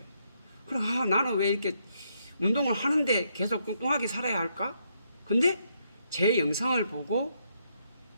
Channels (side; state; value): both; inverted; correlation -0.76